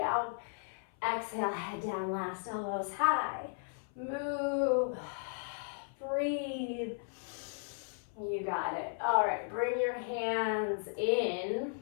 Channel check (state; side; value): silent; right; 54 dB below the other